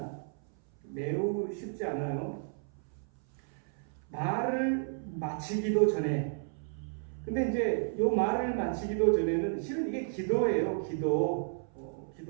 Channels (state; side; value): silent; left; 56 dB below the other